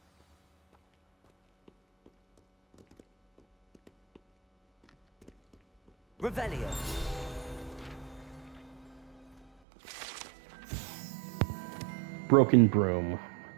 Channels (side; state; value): left; drops out; at 9.5 s